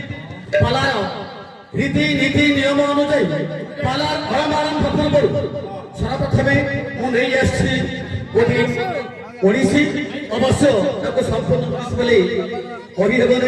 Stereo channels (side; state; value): both; identical; correlation 1.00